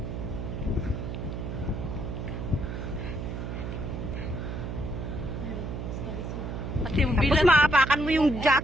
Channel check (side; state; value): right; noise; hum, 5 dB below the sound